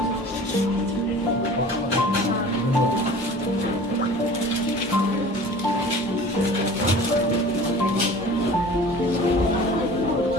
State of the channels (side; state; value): both; normal; correlation 0.42